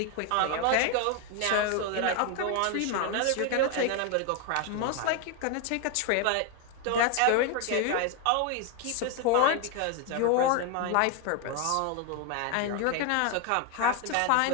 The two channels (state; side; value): different; both; correlation 0.01